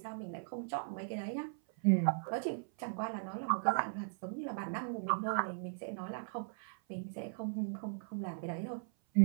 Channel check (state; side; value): silent; left; 52 dB below the other